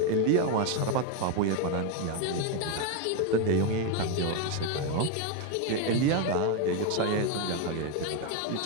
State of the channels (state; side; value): different; both; correlation 0.02